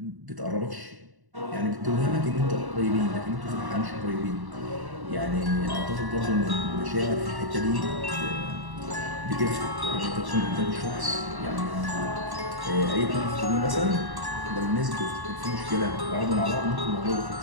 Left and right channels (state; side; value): late; left; 1.1 ms